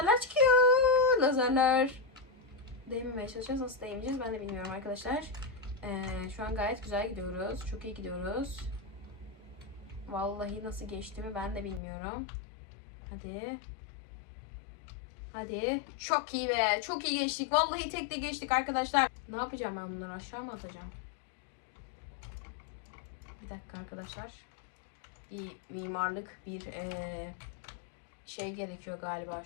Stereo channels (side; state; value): right; drops out; at 11.8 s